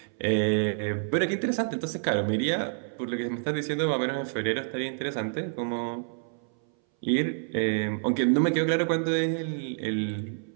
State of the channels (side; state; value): left; silent; 59 dB below the other